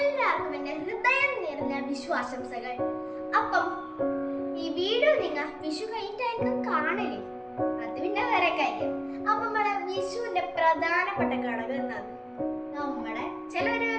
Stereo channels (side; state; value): both; identical; correlation 1.00